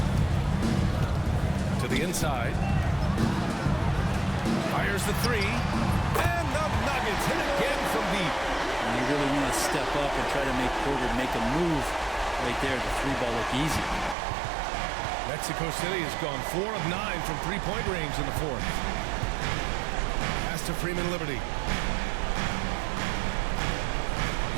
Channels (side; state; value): left; drops out; at 14.2 s